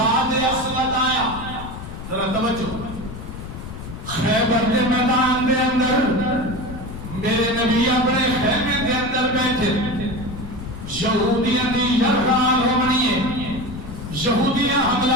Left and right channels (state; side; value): noise; left; rumble, 10 dB below the sound